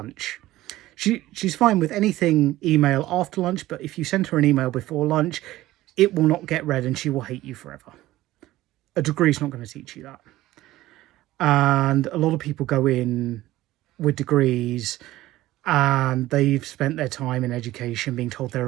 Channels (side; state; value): left; quieter; 16.2 dB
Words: She's fine with anything email after lunch, but if you send her an email before lunch, it will not get read and she will hate you forever. A degree's not going to teach you that. And a lot of people go in with degrees and they've spent their time in education being told they're